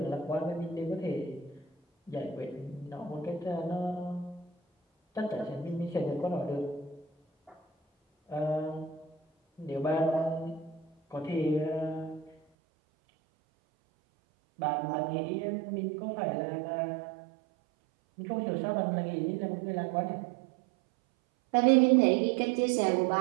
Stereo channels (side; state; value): left; drops out; at 12.4 s